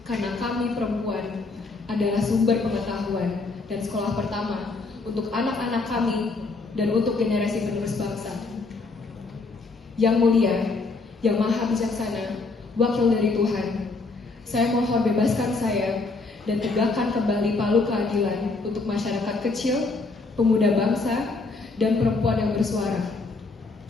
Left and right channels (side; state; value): right; quieter; 3.8 dB